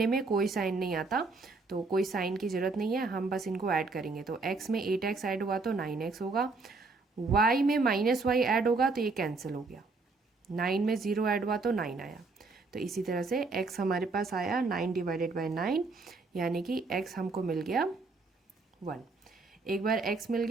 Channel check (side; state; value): left; quieter; 3.9 dB